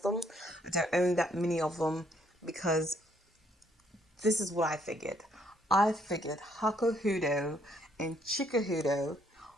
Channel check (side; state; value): both; normal; correlation 0.68